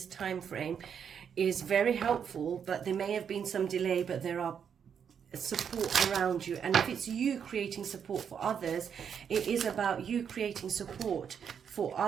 time frame is very helpful, but there may have been some delay, but there are support around you. And if it's you creating support for others, it is about you creating support for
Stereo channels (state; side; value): quieter; left; 7.6 dB